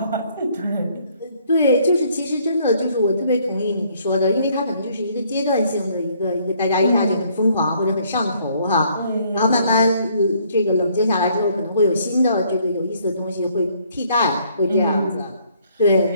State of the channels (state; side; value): inverted; both; correlation -0.65